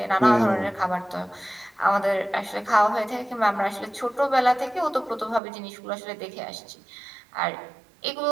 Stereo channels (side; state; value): left; drops out; at 5.4 s